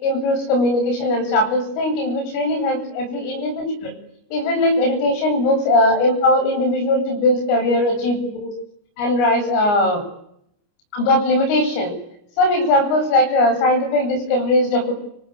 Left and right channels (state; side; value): late; right; 29 ms